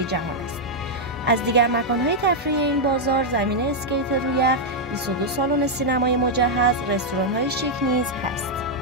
جهان است. از دیگر مکان‌های تفریحی این بازار زمین اسکیت روی یخ، 22 سالن سینمای مجهز، رستوران‌های شیک نیز هست.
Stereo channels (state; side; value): normal; both; correlation -0.03